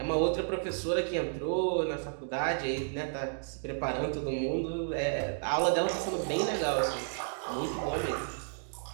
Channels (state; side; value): silent; left; digital silence